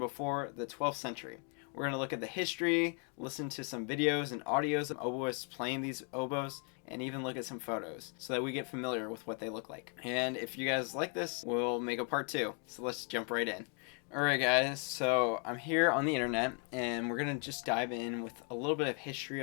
the 12th century. We're going to look at the history, listen to some videos and audios of oboists playing these oboes, and even look at some photos so that we get familiar with what they look like. And if you guys like this, we'll make a part 2. So let's jump right in. Alright guys, so I'm here on the internet and we're going to just dive in with a little bit of history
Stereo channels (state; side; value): quieter; right; 37.7 dB